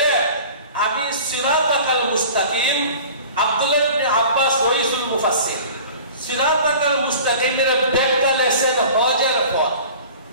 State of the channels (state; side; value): inverted; both; correlation -0.42